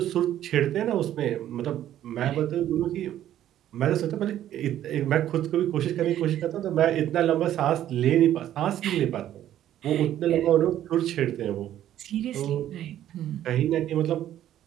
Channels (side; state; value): left; quieter; 11.9 dB